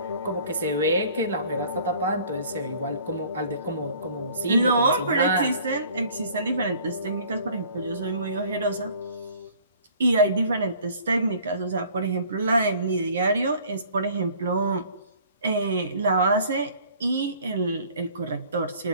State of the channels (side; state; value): both; inverted; correlation -0.53